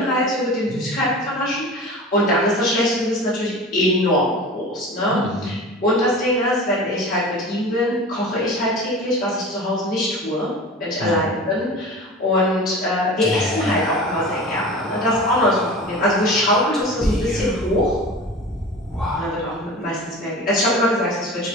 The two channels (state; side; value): normal; both; correlation 0.35